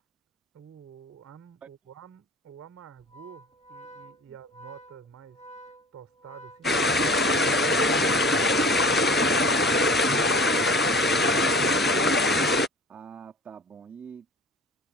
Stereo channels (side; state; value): both; normal; correlation 0.42